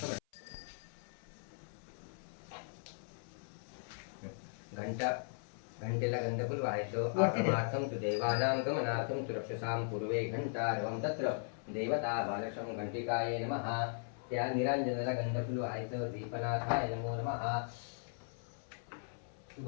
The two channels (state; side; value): silent; right; 52 dB below the other